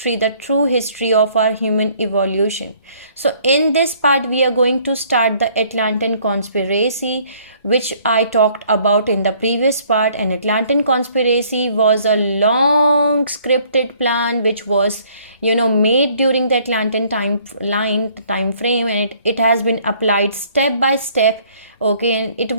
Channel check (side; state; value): both; inverted; correlation -0.60